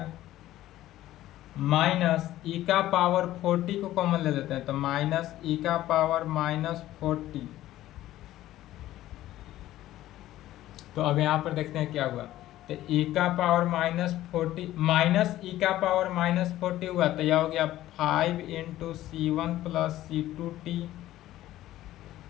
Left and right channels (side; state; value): right; quieter; 14.5 dB